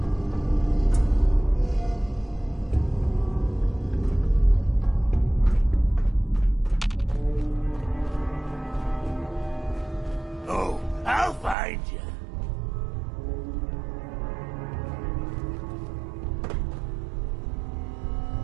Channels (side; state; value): left; drops out; at 11.6 s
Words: Oh, I'll find you.